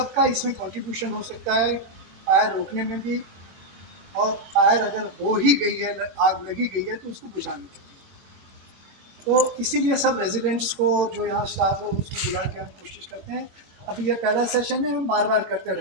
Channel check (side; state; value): left; late; 22 ms